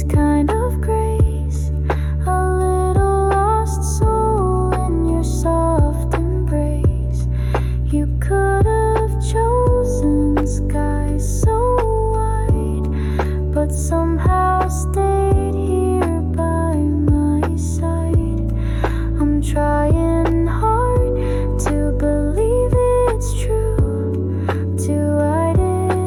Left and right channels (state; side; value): identical; both; correlation 1.00